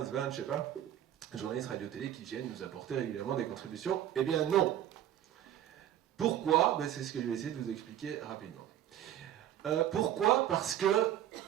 20, je sais pas, journalistes radio-télé qui viennent nous apporter régulièrement des contributions. Eh bien non. Pourquoi? C'est ce que je vais essayer de vous expliquer rapidement. Pourquoi? Parce que,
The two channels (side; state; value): left; quieter; 11.5 dB